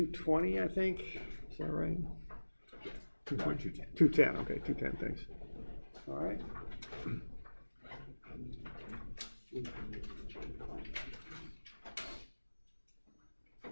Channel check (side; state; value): both; inverted; correlation -1.00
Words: I think. Is that right? 210. 210. Okay, 210. Thanks. All right.